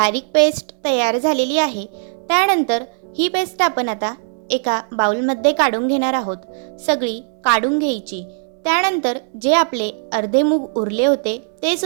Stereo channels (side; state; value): left; silent; digital silence